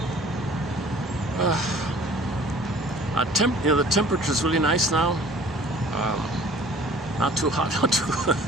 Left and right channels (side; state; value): both; normal; correlation 0.50